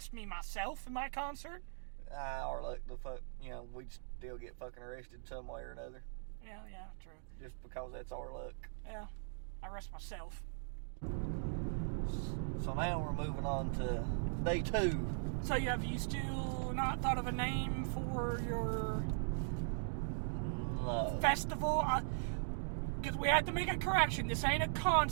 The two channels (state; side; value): silent; left; digital silence